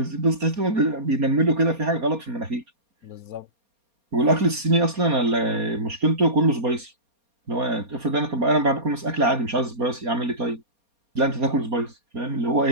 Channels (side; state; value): left; late; 4.2 ms